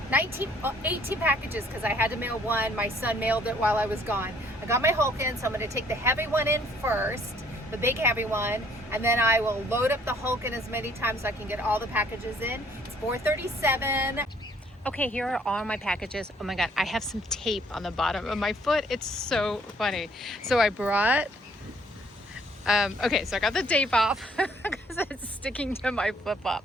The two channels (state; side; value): normal; both; correlation 0.62